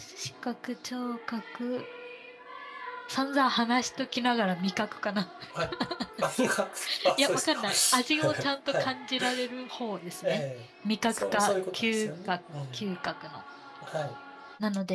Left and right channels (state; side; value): identical; both; correlation 1.00